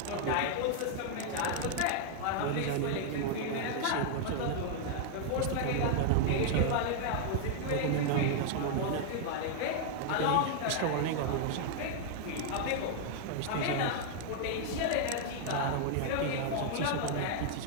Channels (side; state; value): both; different; correlation 0.00